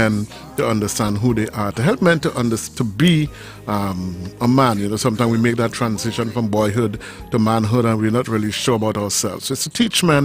to understand who they are, to help men to be a man. You know, sometimes we make that transition from boyhood to manhood and we're not really sure about ourselves. So it's to teach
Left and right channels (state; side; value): identical; both; correlation 1.00